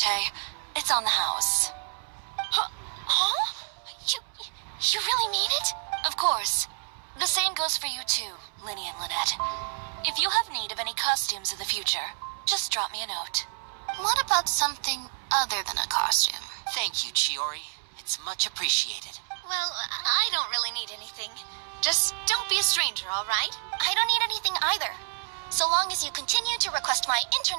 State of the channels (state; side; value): silent; left; 59 dB below the other